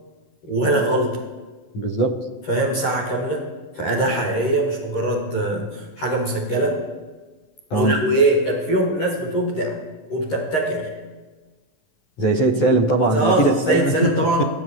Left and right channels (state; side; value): late; right; 13 ms